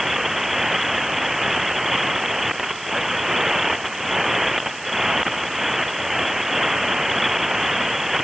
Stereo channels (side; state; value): right; noise; hiss, 16 dB below the sound